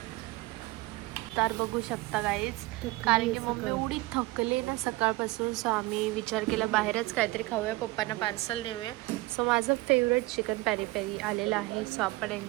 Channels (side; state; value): left; quieter; 21.4 dB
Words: तर बघू शकता गाईज कारण की मम्मी एवढी थकले ना सकाळपासून. सो आम्ही विचार केला बाहेरच काहीतरी खाऊया. पप्पांना पार्सल नेऊया. सो माझं फेवरेट चिकन पेरी पेरी आलेलं आहे. सो आपण